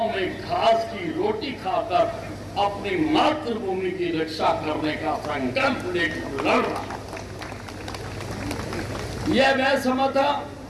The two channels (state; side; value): identical; both; correlation 1.00